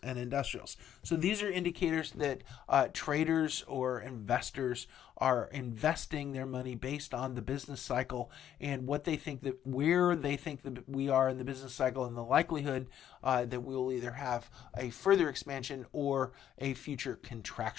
and industrials. So these are indicators that traders or investors are investing their money based on the business cycle and what they think, that where they think that we are in the business cycle, and the likelihood that we will either have a further expansion or a future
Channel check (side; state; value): right; quieter; 10.4 dB